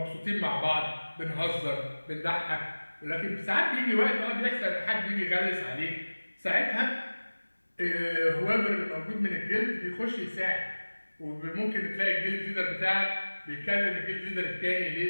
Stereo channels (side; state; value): both; inverted; correlation -1.00